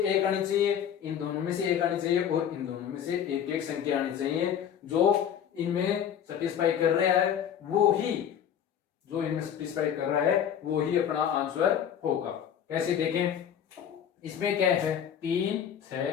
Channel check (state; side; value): quieter; right; 9.0 dB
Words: एक आनी चाहिए, इन दोनों में से एक आनी चाहिए और इन दोनों में से एक एक संख्या आनी चाहिए। जो इनमें सेटिस्फाई कर रहा है वो ही, जो इनमें सेटिस्फाई कर रहा है वो ही अपना आंसर होगा। कैसे देखें? इसमें क्या है? 3,